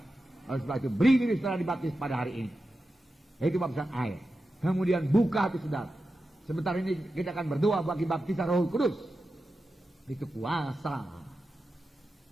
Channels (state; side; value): normal; both; correlation 0.91